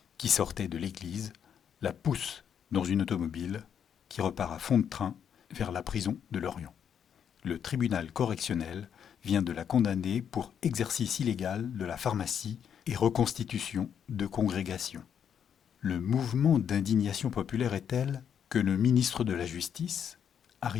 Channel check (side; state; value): right; quieter; 8.3 dB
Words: qui sortait de l'église, la poussent dans une automobile qui repart à fond de train vers la prison de Lorient. Le tribunal correctionnel vient de la condamner pour exercice illégal de la pharmacie et reconstitution de congrégation. Le mouvement d'indignation populaire est tel que le ministre de la Justice,